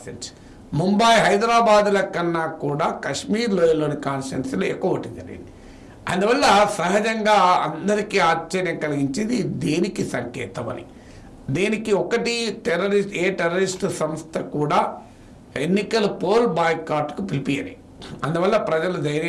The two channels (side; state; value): both; identical; correlation 1.00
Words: ముంబై, హైదరాబాద్ల కన్నా కూడా కశ్మీర్ లోయలోని కాన్స్టిట్యున్సీలో ఎక్కువ ఓటింగ్ జరిగింది. అందువల్ల సహజంగా అందరికీ ఆశ్చర్యం కలిగించేది దేనికి సంకేతం అని. దేనికి ఒకటి, టెర్రరిస్ట్ సంస్థ కూడా ఎన్నికల పోల్ బాయ్కాట్కు పిలిపియని. అందువల్ల ప్రజలు